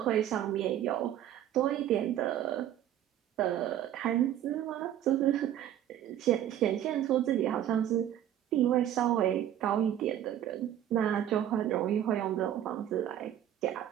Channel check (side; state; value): left; quieter; 11.3 dB